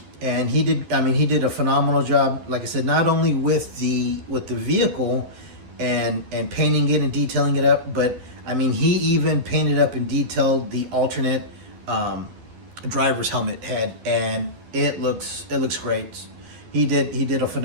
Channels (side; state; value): left; late; 11 ms